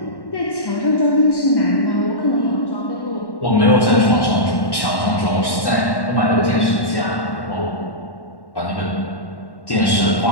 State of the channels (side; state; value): right; late; 1.1 ms